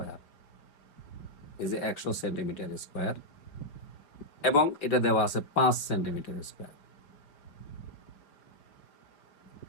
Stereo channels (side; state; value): right; late; 5.3 ms